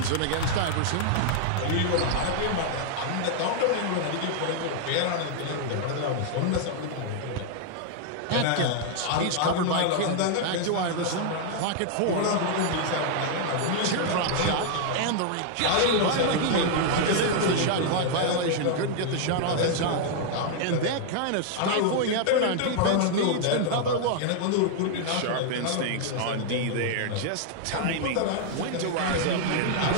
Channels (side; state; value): both; different; correlation 0.00